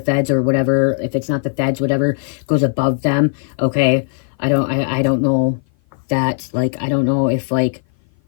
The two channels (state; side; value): silent; right; 56 dB below the other